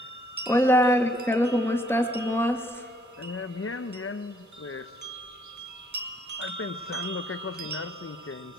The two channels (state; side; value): normal; both; correlation 0.66